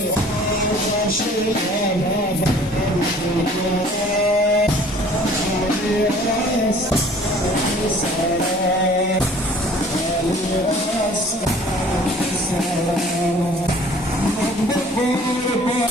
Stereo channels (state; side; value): normal; both; correlation 0.51